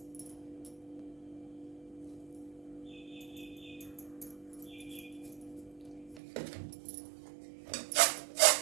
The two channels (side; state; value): left; drops out; at 6.2 s